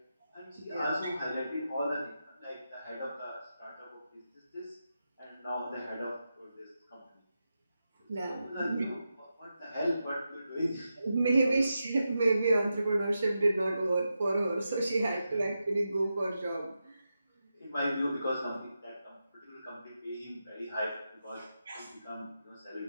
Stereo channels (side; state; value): both; inverted; correlation -0.89